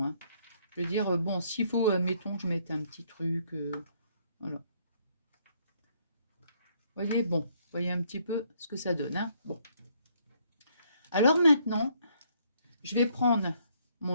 Hein. Je veux dire, bon, s'il faut, mettons, je mette un petit truc. Voilà. Vous voyez, bon, vous voyez un petit peu ce que ça donne. Hein. Bon. Alors maintenant, je vais prendre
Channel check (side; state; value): both; inverted; correlation -0.68